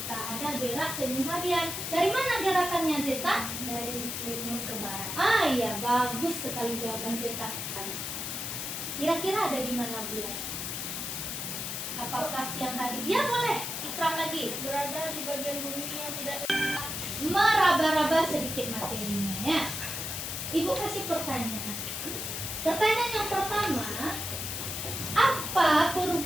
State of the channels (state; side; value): noise; left; hiss, 4 dB below the sound